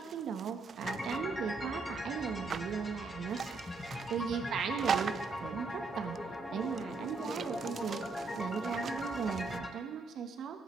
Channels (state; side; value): quieter; left; 4.0 dB